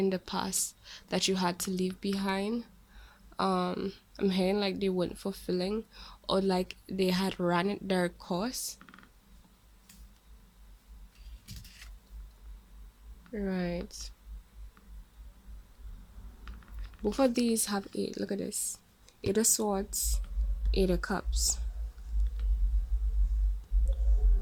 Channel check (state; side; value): identical; both; correlation 1.00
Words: the past that you had to leave behind. I'm hearing like they weren't fulfilling, or like they had run their course. Right. Both of these have eight. Look at this. Eight of Swords, Eight of Cups.